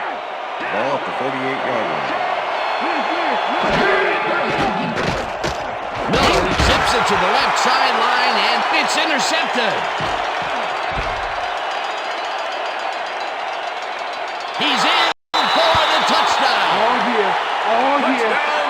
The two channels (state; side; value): identical; both; correlation 1.00